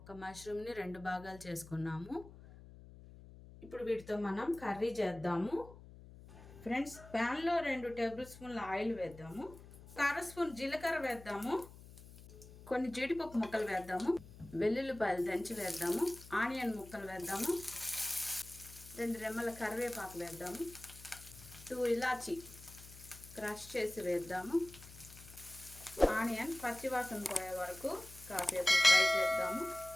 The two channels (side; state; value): left; noise; hum, 18 dB below the sound